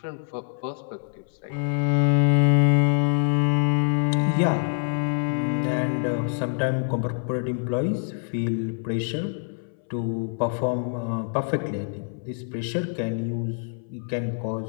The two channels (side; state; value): right; silent; 62 dB below the other